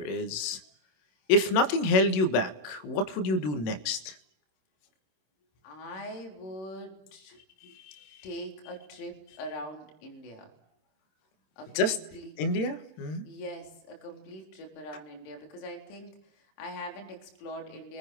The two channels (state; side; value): late; right; 27 ms